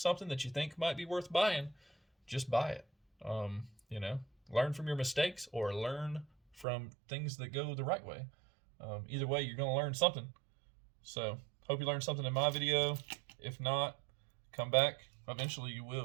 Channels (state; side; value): drops out; left; at 6.7 s